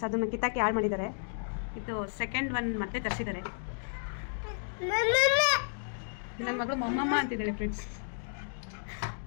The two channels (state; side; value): silent; right; digital silence